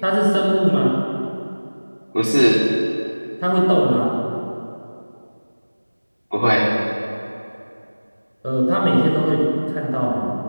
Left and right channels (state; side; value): inverted; both; correlation -1.00